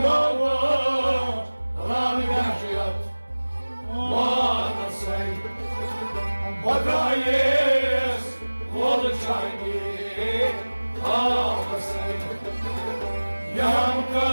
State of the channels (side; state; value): both; inverted; correlation -1.00